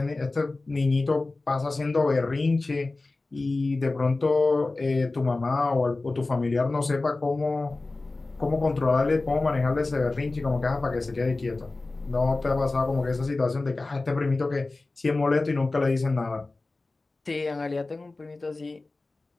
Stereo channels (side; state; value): right; quieter; 3.3 dB